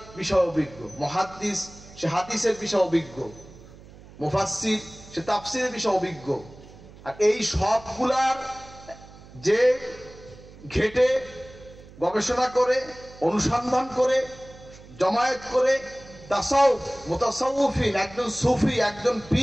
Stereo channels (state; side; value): noise; right; hum, 20 dB below the sound